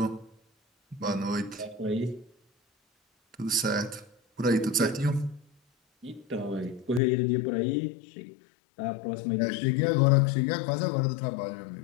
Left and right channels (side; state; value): right; drops out; at 7.0 s